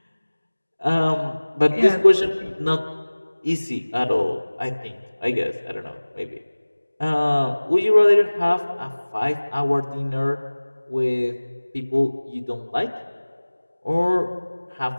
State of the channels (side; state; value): both; inverted; correlation -1.00